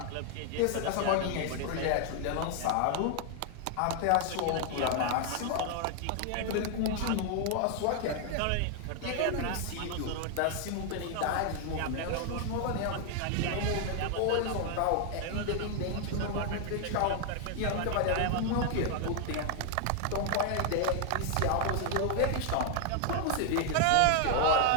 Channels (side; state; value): both; different; correlation 0.00